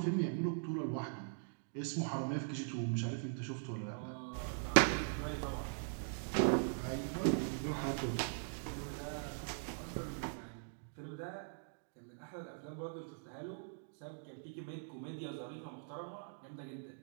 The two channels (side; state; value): left; silent; digital silence